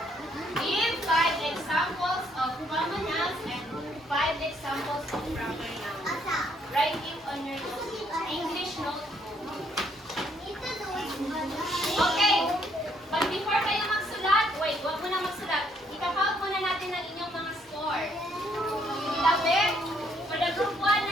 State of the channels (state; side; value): normal; both; correlation 0.69